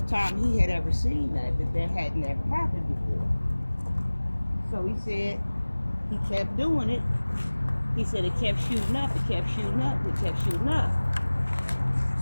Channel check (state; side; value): inverted; both; correlation -1.00